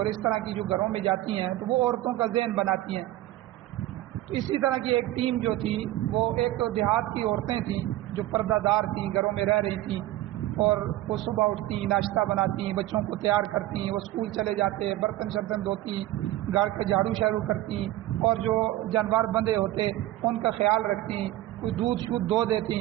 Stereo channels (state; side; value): quieter; left; 15.6 dB